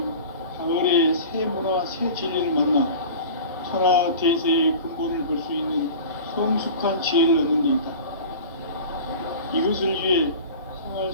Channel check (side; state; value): both; inverted; correlation -0.37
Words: 가을의 새 문화, 새 진리를 만나 천하 대세의 근본을 볼 수 있는 성숙한 지혜를 얻는 데 있다. 이것을 위해 생활